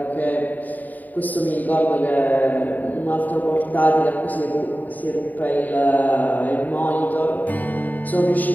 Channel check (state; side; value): late; right; 0.082 ms